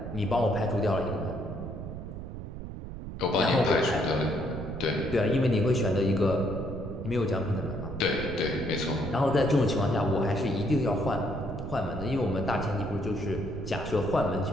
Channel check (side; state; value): right; noise; rumble, 9 dB below the sound